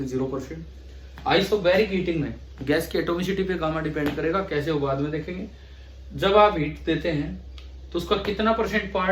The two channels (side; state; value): both; identical; correlation 1.00